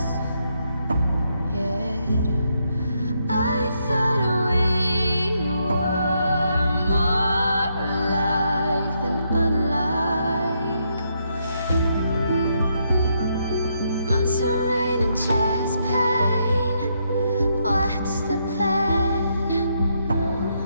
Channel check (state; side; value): inverted; both; correlation -0.77